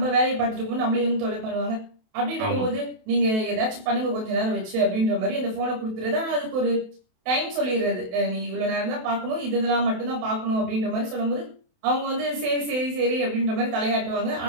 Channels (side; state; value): left; late; 28 ms